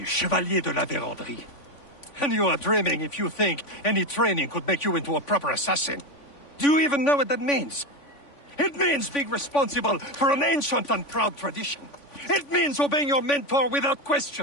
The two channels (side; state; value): right; late; 3.5 ms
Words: Chevalier de la Vérendrye. And you are dreaming if you think any training could make you into a proper assassin. Do you even know what that means? It means being responsible for an ancient and proud tradition. It means obeying your mentor without